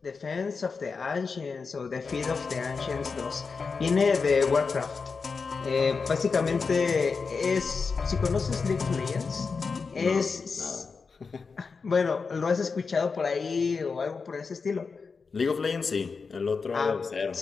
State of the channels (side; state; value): right; quieter; 4.9 dB